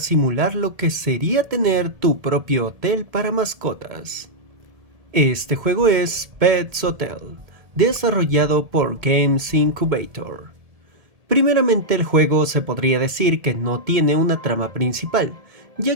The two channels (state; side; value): late; left; 2.2 ms